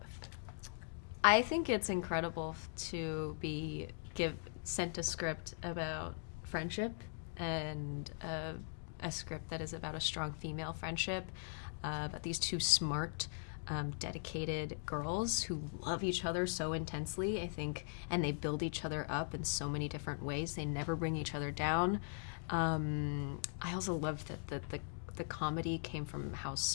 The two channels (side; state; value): right; silent; digital silence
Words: I think it's incredible to be sent a script about friendship and a script that is about a strong female friendship, about these two smart, dedicated girls who love each other so intensely, I think, and they build each other up in so many different ways. They never bring each other down. I also love that the comedy came from how